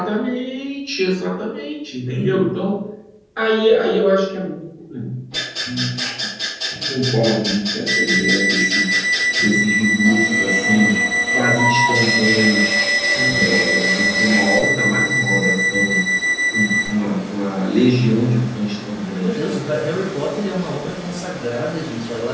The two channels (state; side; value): identical; both; correlation 1.00